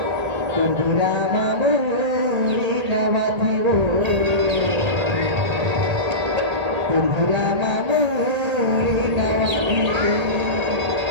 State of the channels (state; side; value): late; left; 1.7 ms